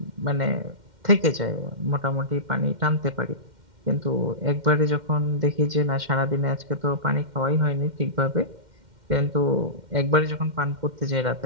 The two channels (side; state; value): left; late; 2.1 ms